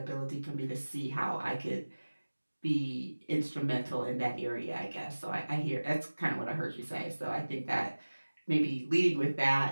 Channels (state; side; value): inverted; both; correlation -1.00